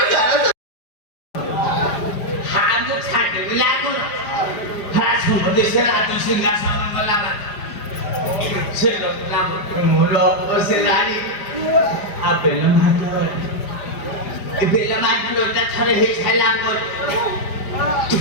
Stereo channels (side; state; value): right; late; 5.0 ms